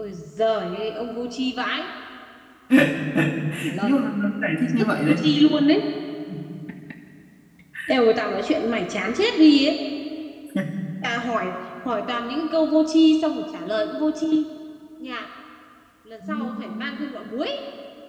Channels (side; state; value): both; identical; correlation 1.00